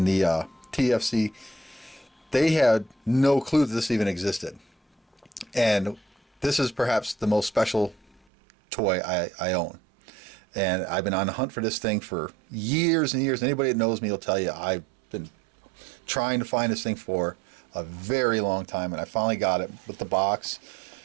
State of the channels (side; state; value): left; drops out; at 8.2 s